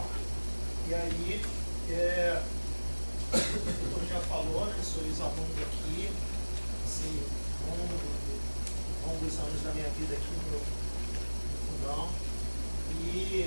E aí, como já falou, né? Sou ex-aluno aqui, assim, longos anos da minha vida aqui no Fundão,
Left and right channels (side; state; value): both; inverted; correlation -1.00